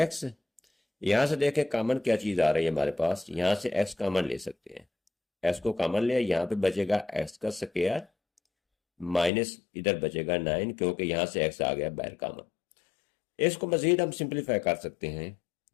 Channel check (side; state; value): right; drops out; at 9.3 s